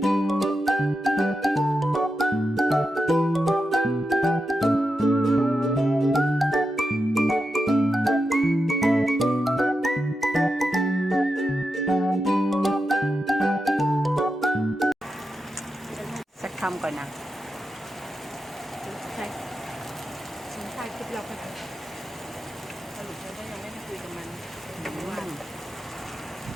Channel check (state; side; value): normal; both; correlation 0.88